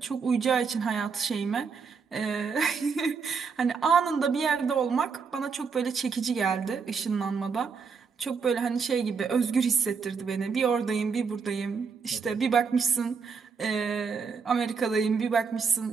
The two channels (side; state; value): left; quieter; 5.5 dB